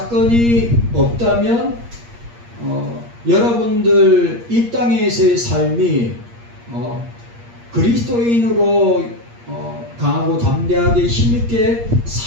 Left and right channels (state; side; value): late; left; 8.5 ms